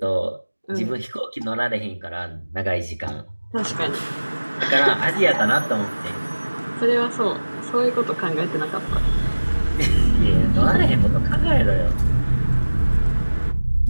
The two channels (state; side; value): inverted; both; correlation -1.00